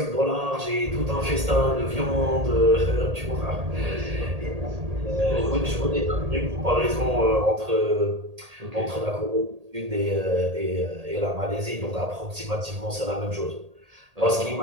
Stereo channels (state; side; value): late; left; 1.8 ms